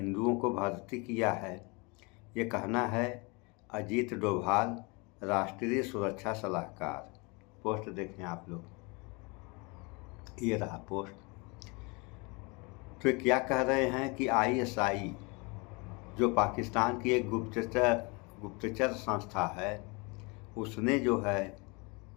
को भर्ती किया है। ये कहना है अजीत डोभाल, राष्ट्रीय सुरक्षा सलाहकार। पोस्ट देखें आप लोग, ये रहा पोस्ट। तो क्या कह रहे हैं कि आईएसआई जो पाकिस्तान की एक गुप्तचर संस्था है, उसने जो है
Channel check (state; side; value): quieter; right; 28.9 dB